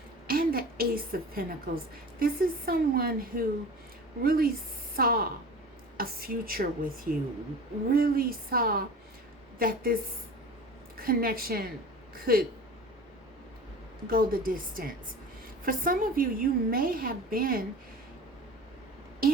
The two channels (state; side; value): normal; both; correlation 0.37